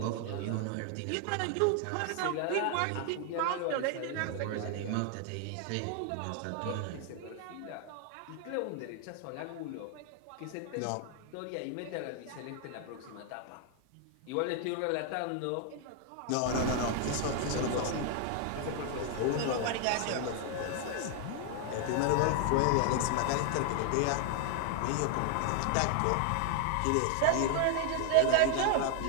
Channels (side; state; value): both; different; correlation 0.00